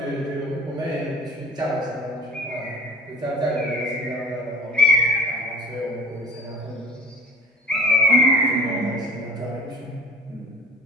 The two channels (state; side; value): normal; both; correlation 0.44